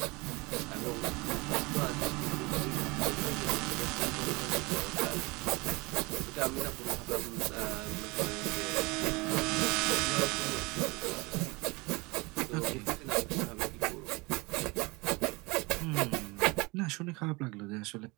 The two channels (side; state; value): left; quieter; 25.4 dB